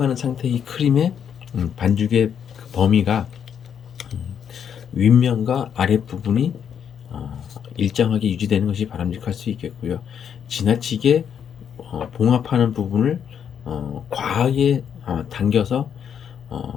상태의 크림의 반죽의 그 범위가 윗면과 아랫부분이 일정하게 유지되는 것이 바람직할 수 있겠고요. 지나치게 봉합하는 부분을 과하게 당겨서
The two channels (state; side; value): quieter; right; 8.1 dB